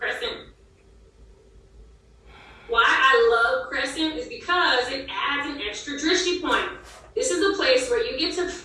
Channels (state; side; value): identical; both; correlation 1.00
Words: Why I love crescent is because it adds an extra drishti point. This is a place where you get to